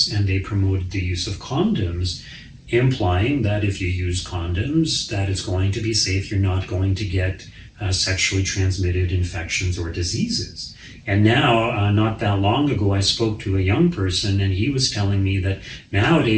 and they promoted the use of condoms, implying that if you use condoms, that it's going to be safe, you're not going to get sexually transmitted infections or diseases. And now, not that long ago, I spoke to a young person, and he was telling me that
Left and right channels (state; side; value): identical; both; correlation 1.00